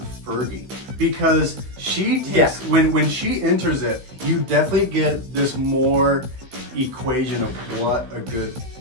Fergie, because she takes, when she enters it, you definitely get this more equation of what a good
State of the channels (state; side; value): late; left; 15 ms